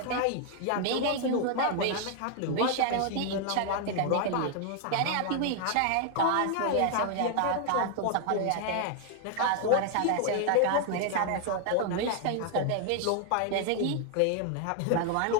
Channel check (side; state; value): both; different; correlation 0.00